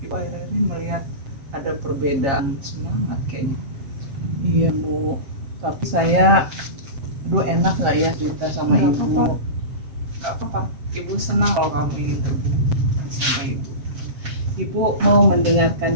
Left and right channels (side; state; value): left; late; 7.7 ms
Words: akhir-akhir ini melihat ada perbedaan semangat kayaknya. Iya, Bu. Tapi saya, enak nggak ya cerita sama Nggak ibu? apa-apa. Gak apa-apa. Ibu senang kalau kamu ingin terbuka sama ibu. Ibu mau mendengarkan